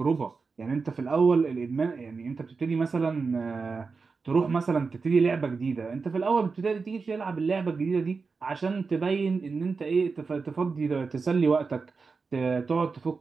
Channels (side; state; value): left; quieter; 4.6 dB